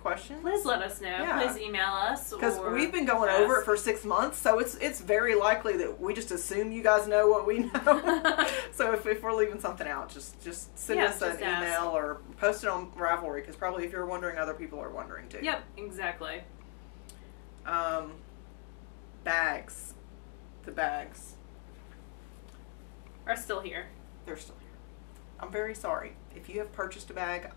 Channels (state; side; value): quieter; right; 31.8 dB